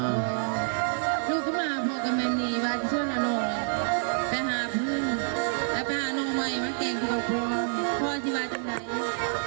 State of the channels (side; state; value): left; silent; 60 dB below the other